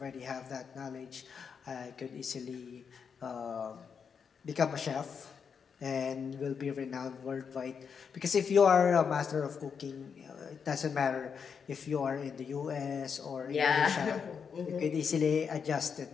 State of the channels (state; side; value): quieter; right; 6.5 dB